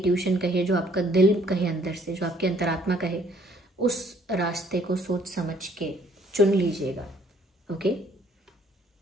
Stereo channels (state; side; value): normal; both; correlation 0.61